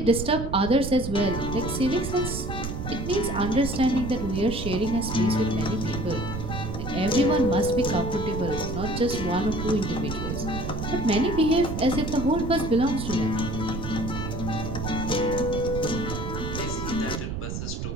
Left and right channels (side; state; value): right; noise; rumble, 5 dB below the sound